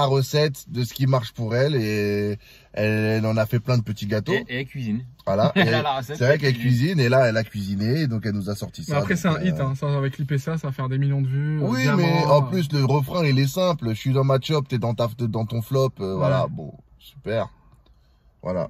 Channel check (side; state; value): both; identical; correlation 1.00